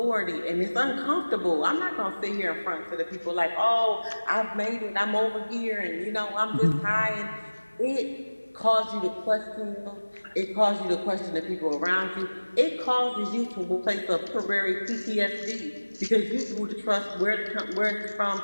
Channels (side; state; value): both; inverted; correlation -1.00